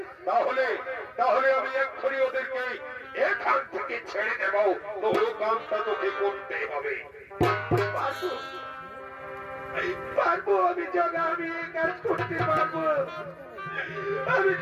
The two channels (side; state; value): both; identical; correlation 1.00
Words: তাহলে তাহলে আমি এক্ষুনি ওদেরকে এখান থেকে ছেড়ে দেব। তোর কামটা তোকে করতে হবে। পারবো আমি জগা, আমি এই কাজ করতে পারবো। আমি